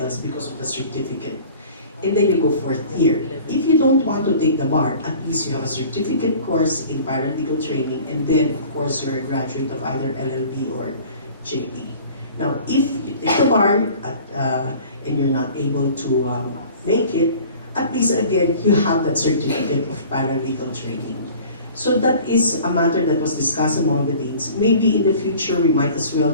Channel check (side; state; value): both; inverted; correlation -0.46